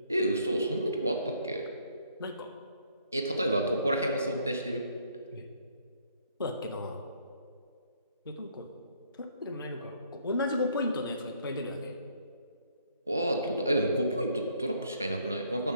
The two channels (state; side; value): inverted; both; correlation -0.66